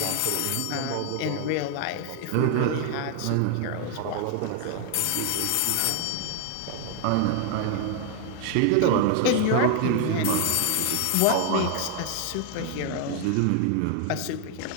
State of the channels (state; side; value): different; both; correlation 0.00